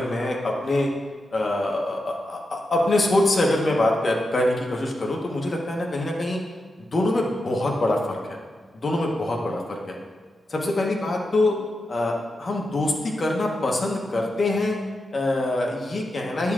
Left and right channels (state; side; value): normal; both; correlation 0.88